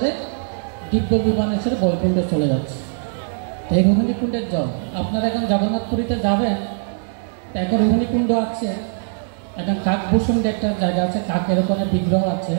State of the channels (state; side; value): silent; left; 64 dB below the other